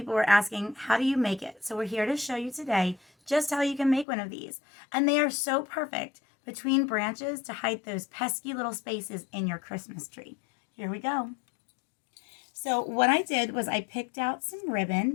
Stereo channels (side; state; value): right; drops out; at 4.0 s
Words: were asking, how do you make it? So we're here to show you today just how you can make one of these. And they are so perfect between branches to hide those pesky little spaces in your Christmas tree. Here we go. So what I did was I picked out some